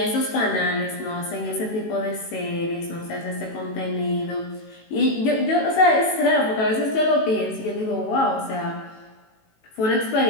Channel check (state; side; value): late; right; 18 ms